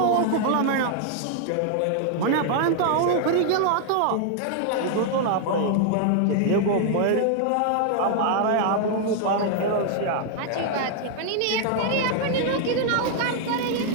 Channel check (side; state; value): both; different; correlation 0.00